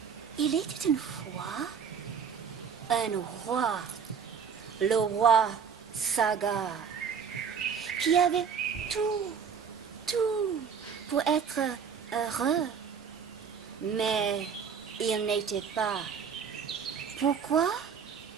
Il était une fois un roi, le roi Saga, qui avait tout pour être heureux. Mais il n'était pas. Pourquoi?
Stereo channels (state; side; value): quieter; left; 6.8 dB